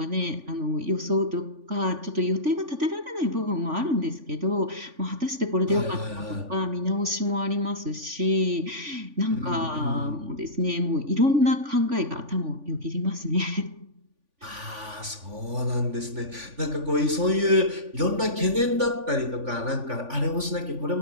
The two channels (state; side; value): late; left; 3.5 ms